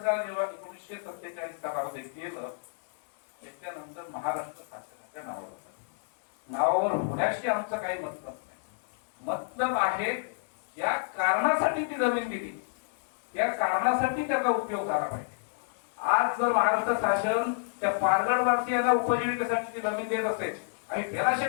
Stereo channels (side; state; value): right; silent; 57 dB below the other